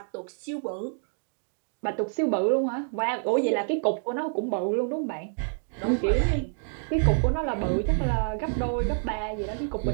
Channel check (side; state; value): left; silent; digital silence